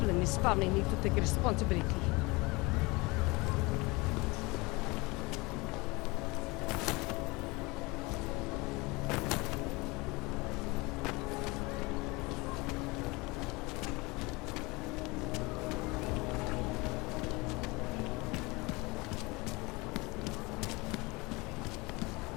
in his family need to take responsibility.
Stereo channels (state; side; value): quieter; right; 24.6 dB